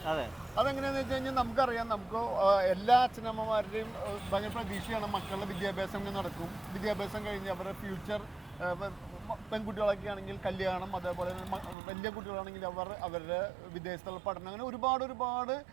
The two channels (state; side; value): drops out; left; at 11.8 s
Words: അതെങ്ങനെയാണെന്ന് വെച്ച് കഴിഞ്ഞാൽ നമുക്കറിയാം, നമുക്ക് എല്ലാ അച്ഛനമ്മമാരുടെയും ഭയങ്കര പ്രതീക്ഷയാണ് മക്കളുടെ വിദ്യാഭ്യാസം ഇങ്ങനെ നടക്കും. വിദ്യാഭ്യാസം കഴിഞ്ഞ് അവരുടെ ഫ്യൂച്ചർ, പെൺകുട്ടികളൊക്കെ ആണെങ്കിൽ കല്യാണം, അതേപോലെ വലിയ കുട്ടികളാണെങ്കിൽ അവരുടെ വിദേശത്തുള്ള പഠനം, അങ്ങനെ ഒരുപാട്